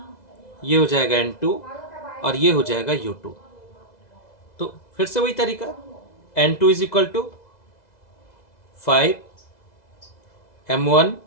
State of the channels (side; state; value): right; late; 2.0 ms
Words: ये हो जाएगा N2 और ये हो जाएगा U2। तो फिर से वही तरीका, N2 is equal to 5 M1